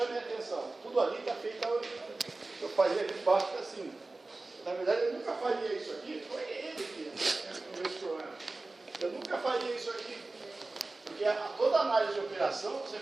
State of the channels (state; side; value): quieter; left; 3.3 dB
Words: a atenção. Tudo ali está feito. Eu faria de baixo para cima. Na verdade, eu nunca faria isso aqui. Foi ele que resolveu esse problema. Eu nunca faria isso aqui. Porque toda análise de operação você